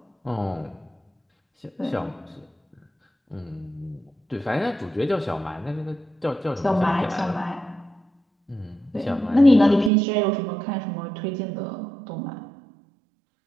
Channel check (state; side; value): drops out; left; at 9.9 s